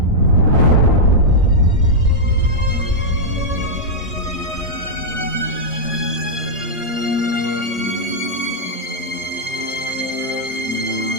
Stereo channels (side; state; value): both; normal; correlation -0.05